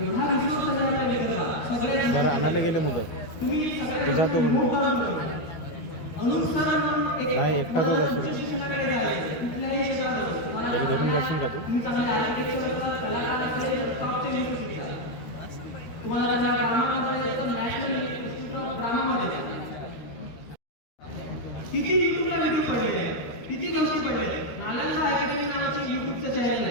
एवढा रिसोर्स आहे आपल्या विदर्भात. सगळ्या आणायला गेले मुलं तुम्ही जातो अनुसार नाही, एकटाच असतो. शिक्षणाकडे जायचं कुठल्याही क्षेत्रात त्याला धरून जाशील का तू? तुम्ही चांगले आर्किटेक्चर कलाकार असेल टॉपच्या युनिव्हर्सिटीचा, तुम्हाला त्यांना ड्रामा करायचं तर नॅशनल इन्स्टिट्यूट ऑफ ड्रामामध्ये किती युट्यूबला व्हिडिओ पडलेले आहेत, किती गोष्टी पडलेल्या आहेत. नालंदा अकॅडमी नावाचे युट्यूबचं चॅनल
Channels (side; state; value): right; late; 13 ms